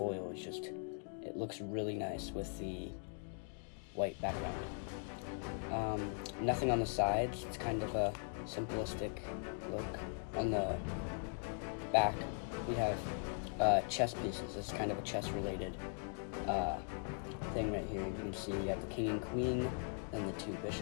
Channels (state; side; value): silent; right; 51 dB below the other